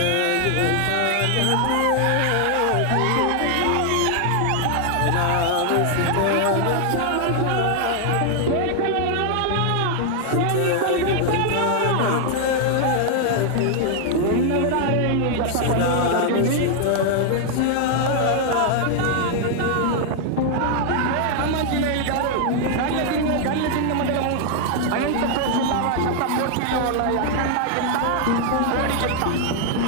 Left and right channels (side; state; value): both; different; correlation 0.00